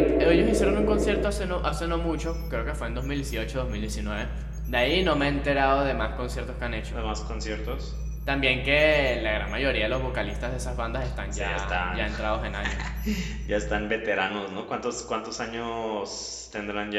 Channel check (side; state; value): both; identical; correlation 1.00